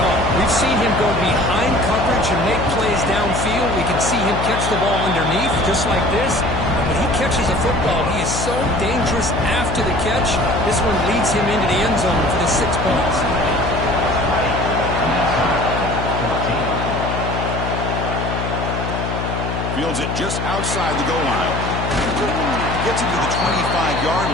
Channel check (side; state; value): left; noise; hum, 3 dB below the sound